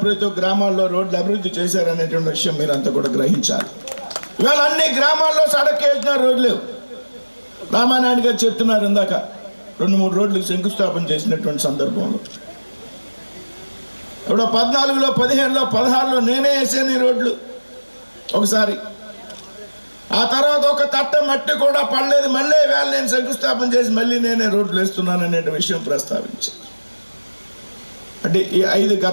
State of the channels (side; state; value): both; inverted; correlation -1.00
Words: ప్రతి గ్రామాల్లో రోడ్లు అభివృద్ధి చేశారనేటువంటి విషయం మీరంతా కూడా గ్రహించాలి. ఇవాళ అన్ని గ్రామాల్లో సడక్ యోజన రోడ్లు రామానాయుడు గారు చెప్తున్నారు ఇందాక 2-3 రోడ్లకు శంకుస్థాపన చేసినటువంటి సందర్భంలో. ఇప్పుడు 14లో 15లో 16లో నేనే వేసాను ఈ రోడ్లు ఒకసారి. ఆ తర్వాత ఒక తట్ట మట్టి కూడా పడలేదు, మళ్ళీ వేళ నేను శంకుస్థాపన చేసి మళ్ళీ నేనే రోడ్లు వేస్తున్నాను అనే విషయం ప్రస్తావించాను. అంటే ఈ